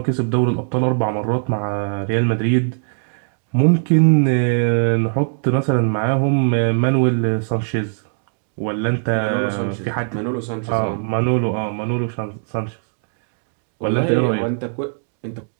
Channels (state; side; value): silent; left; digital silence